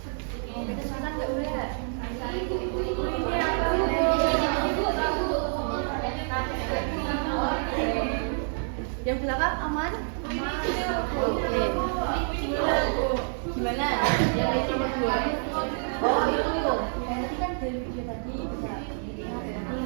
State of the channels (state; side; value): silent; left; 57 dB below the other